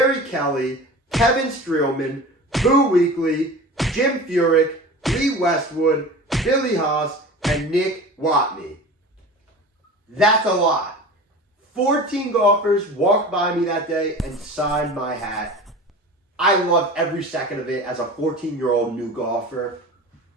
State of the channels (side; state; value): both; normal; correlation 0.35